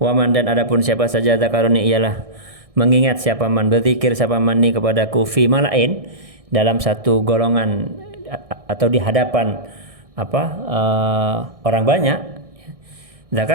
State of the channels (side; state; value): left; late; 1.6 ms